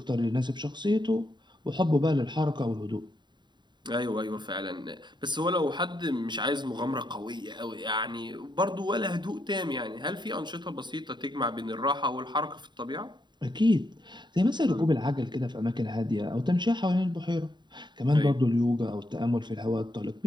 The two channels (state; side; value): late; left; 0.22 ms